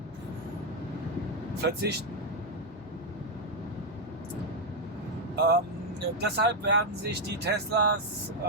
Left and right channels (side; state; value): both; normal; correlation 0.01